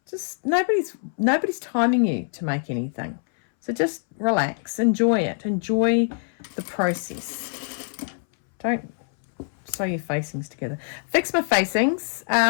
Just nobody's timing you to make anything. So just relax, enjoy it, enjoy the process. Don't sew your facings together. Fix my facings.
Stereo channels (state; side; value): silent; right; 62 dB below the other